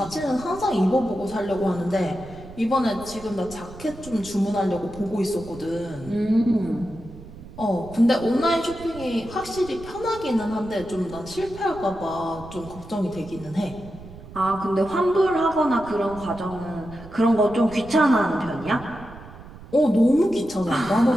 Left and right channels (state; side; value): noise; right; rumble, 16 dB below the sound